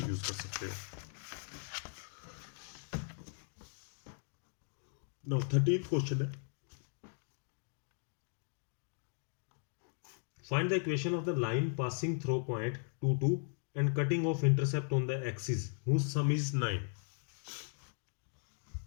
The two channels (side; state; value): right; silent; 53 dB below the other